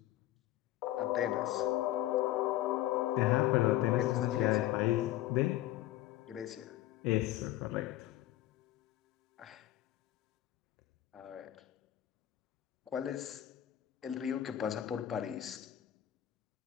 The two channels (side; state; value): right; quieter; 14.2 dB